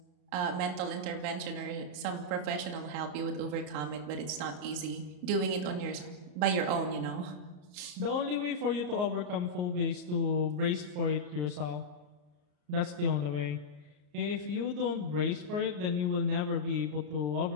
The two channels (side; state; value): left; late; 34 ms